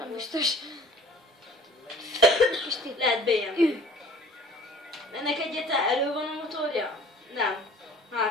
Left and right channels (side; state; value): both; normal; correlation 0.49